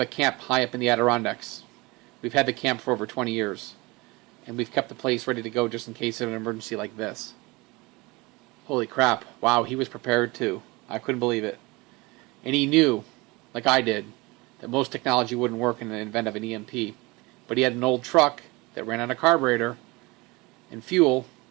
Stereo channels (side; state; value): left; quieter; 23.9 dB